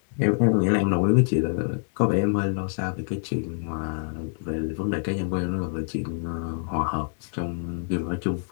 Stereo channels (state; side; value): silent; right; 61 dB below the other